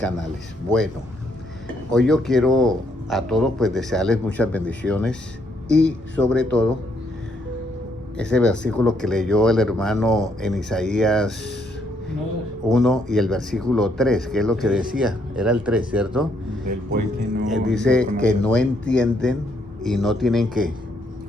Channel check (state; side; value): normal; both; correlation 0.72